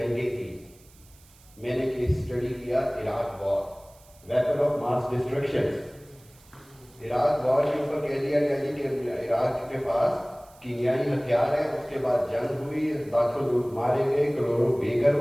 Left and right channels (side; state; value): right; noise; hiss, 27 dB below the sound